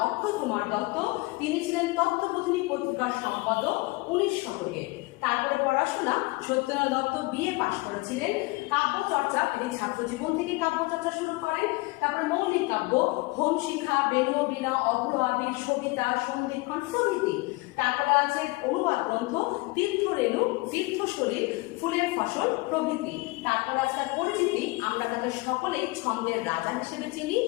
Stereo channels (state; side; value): quieter; right; 24.3 dB